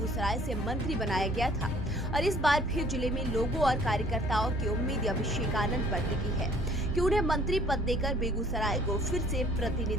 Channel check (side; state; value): both; normal; correlation 0.56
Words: से मंत्री बनाया गया था और इस बार फिर जिले में लोगों और कार्यकर्ताओं की उम्मीद अभिषेक आनंद पर टिकी है कि उन्हें मंत्री पद देकर बेगूसराय को फिर से